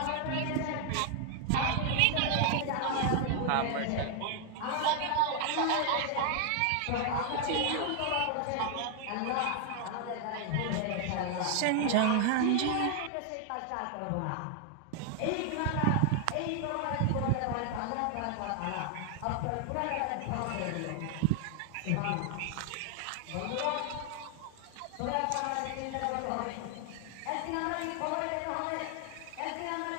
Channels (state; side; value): different; both; correlation 0.00